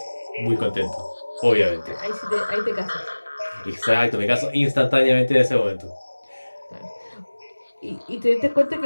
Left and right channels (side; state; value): both; inverted; correlation -1.00